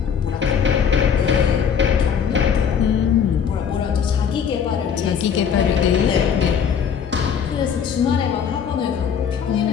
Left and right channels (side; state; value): right; quieter; 7.4 dB